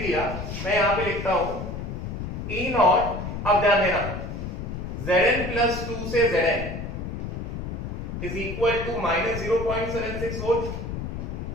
दिया, मैं यहाँ पे लिखता हूँ E नॉट। अब ध्यान देना, Zn plus 2 से Zn is equal to minus 0.76 volt.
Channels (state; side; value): noise; left; rumble, 6 dB below the sound